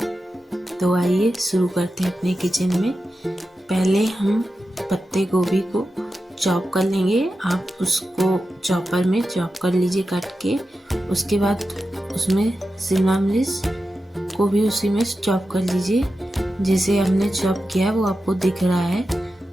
तो आइए शुरू करते हैं अपने किचन में। पहले हम पत्ते गोभी को चॉप कर लेंगे। आप उसको चॉपर में चॉप कर लीजिए काट के। उसके बाद उसमें शिमला मिर्च को भी उसी में चॉप कर लीजिए। जैसे हमने चॉप किया है वो आपको दिख रहा है,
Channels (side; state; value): both; normal; correlation 0.91